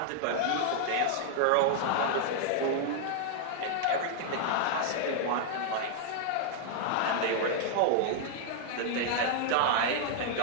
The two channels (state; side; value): different; both; correlation -0.01